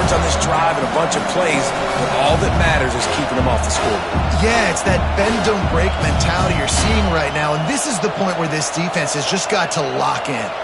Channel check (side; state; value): both; identical; correlation 1.00